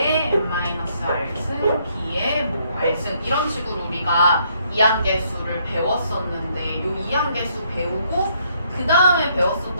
n-r승, B의 뭐 r승 이런 식으로 우리가 이항계수를 배웠었는데 이 이항계수 배우고 그 다음에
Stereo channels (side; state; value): both; inverted; correlation -0.70